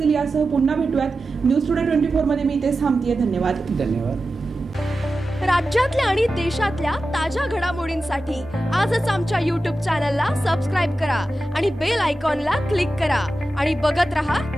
यासह पुन्हा भेटूयात. न्यूज टुडे 24 मध्ये मी इथेच थांबतेय. धन्यवाद. राज्यातल्या आणि देशातल्या ताज्या घडामोडींसाठी आजच आमच्या YouTube चॅनलला सबस्क्राईब करा आणि बेल आयकॉनला क्लिक करा आणि बघत रहा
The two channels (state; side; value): normal; both; correlation 0.93